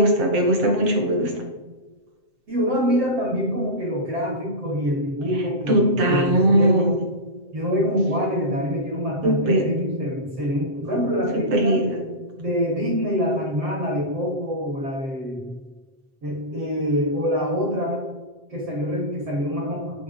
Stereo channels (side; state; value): left; late; 7.6 ms